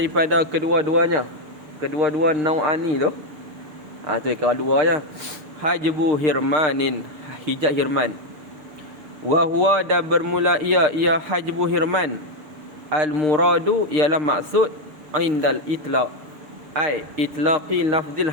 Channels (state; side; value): late; left; 6.6 ms